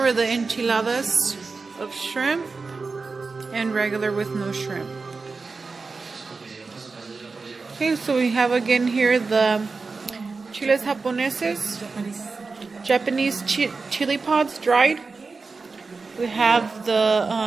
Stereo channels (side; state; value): left; quieter; 4.2 dB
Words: the enchiladas of shrimp and regular with no shrimp. Okay, so we have again here the chiles japoneses, Japanese chili pods dried. We have